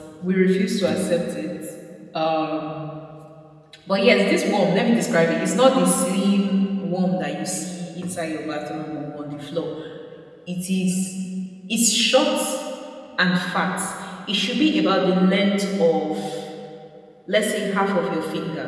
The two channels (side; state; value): both; identical; correlation 1.00